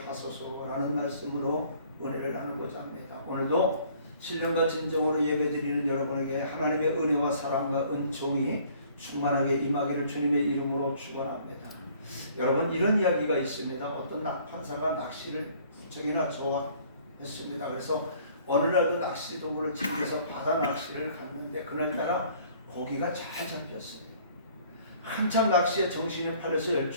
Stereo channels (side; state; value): both; inverted; correlation -0.57